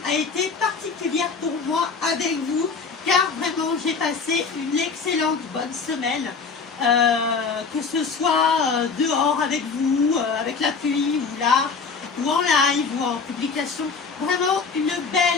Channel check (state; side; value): quieter; right; 5.1 dB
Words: a été particulière pour moi avec vous car vraiment j'ai passé une excellente bonne semaine. Que ce soit dehors avec vous, avec la pluie ou là, ou en live ou en publication. Vraiment une